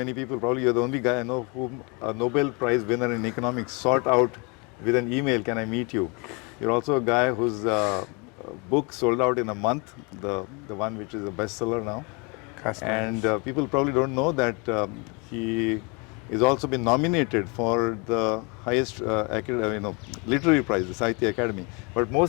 people, probably you're the only guy I know whom a Nobel Prize winner in economics sought out with an email, can I meet you? You're also a guy whose book sold out in a month, the one which is a bestseller now. And people probably don't know that he is also been nominated for the highest literary prize, the Sahitya Academy. But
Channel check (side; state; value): right; quieter; 31.0 dB